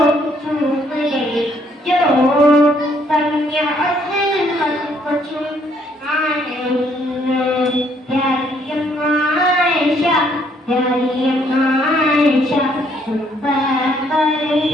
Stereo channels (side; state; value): both; normal; correlation 0.67